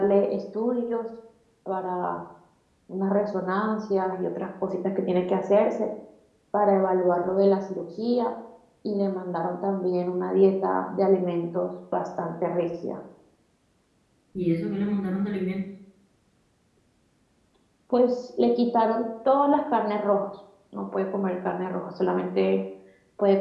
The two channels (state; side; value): identical; both; correlation 1.00